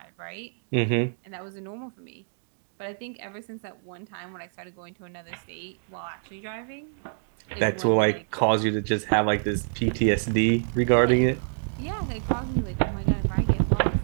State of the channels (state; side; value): silent; left; digital silence